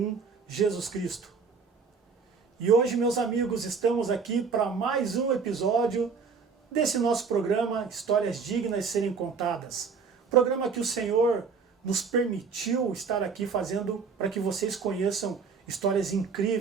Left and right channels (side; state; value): left; quieter; 5.4 dB